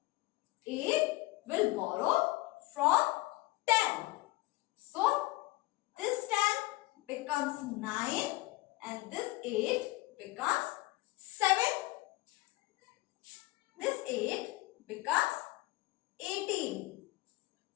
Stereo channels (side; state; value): right; quieter; 20.2 dB